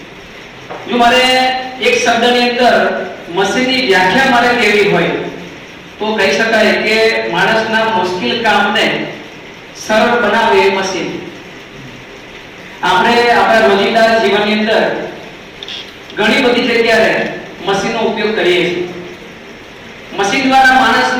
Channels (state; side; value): identical; both; correlation 1.00